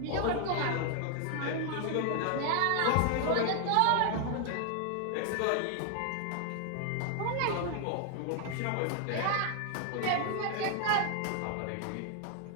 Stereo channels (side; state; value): both; different; correlation 0.00